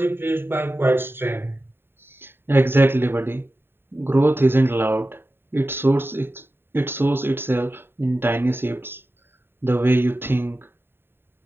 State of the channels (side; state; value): left; late; 0.11 ms